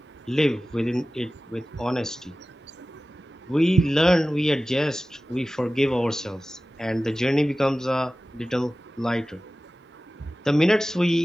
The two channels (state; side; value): normal; both; correlation 0.96